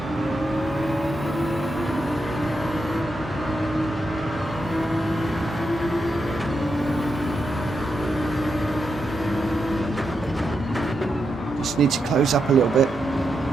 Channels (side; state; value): both; normal; correlation 0.85